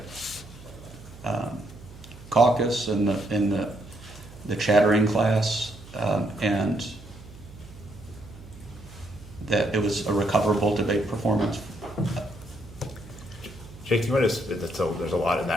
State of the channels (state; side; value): noise; right; hum, 18 dB below the sound